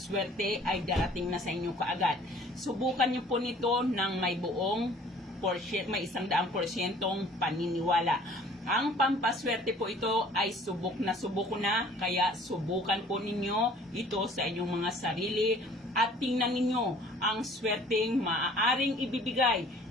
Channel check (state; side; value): normal; both; correlation 0.53